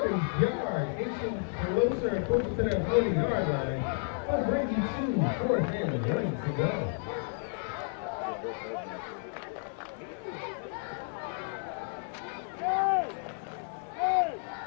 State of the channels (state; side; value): silent; right; 57 dB below the other